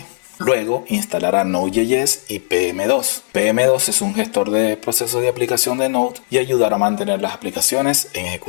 Luego instalará Node.js y PM2. PM2 es un gestor de procesos de aplicación de Node y ayudará a mantener las aplicaciones en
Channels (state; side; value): silent; right; 67 dB below the other